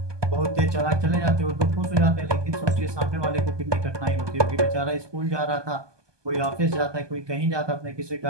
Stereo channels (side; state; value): left; late; 1.2 ms